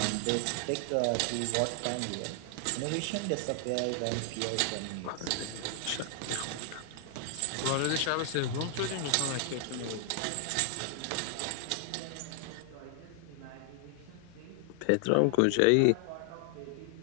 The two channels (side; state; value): both; different; correlation 0.00